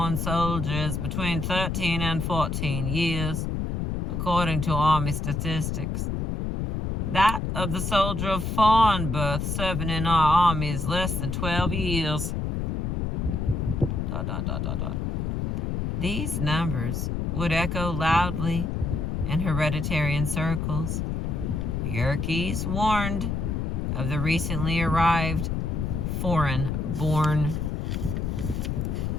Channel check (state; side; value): noise; left; rumble, 1 dB below the sound